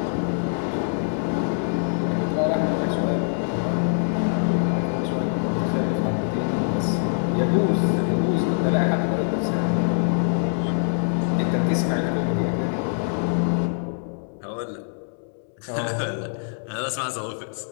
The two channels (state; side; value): silent; right; 63 dB below the other